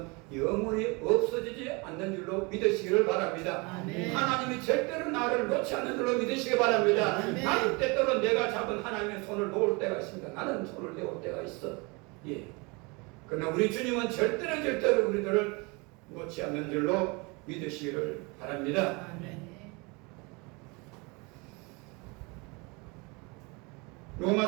영원히 없어지지 않는 줄로 믿으시기를 바랍니다. 아멘. 하나님이 절대로 나를 놓지 않는 줄로 믿으시기 바랍니다. 아멘. 나는 때때로 내가 잡은 하나님의 손을 놓을 때가 있습니다. 나는 손을 내올 때가 있어. 예. 그러나 우리 주님은 절대로 우리들을 놓지 않는 줄로 믿으시기를 바랍니다. 아멘.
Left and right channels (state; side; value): quieter; left; 28.3 dB